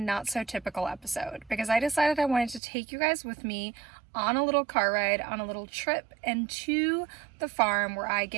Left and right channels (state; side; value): drops out; left; at 2.6 s